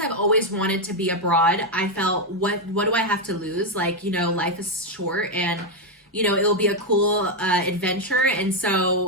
always wanted to be abroad, I felt, what do I have to lose? Like, life is short, and, it'll be a cool adventure. And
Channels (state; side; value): normal; both; correlation 0.03